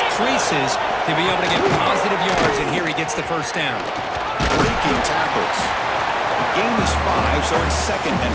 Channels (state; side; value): identical; both; correlation 1.00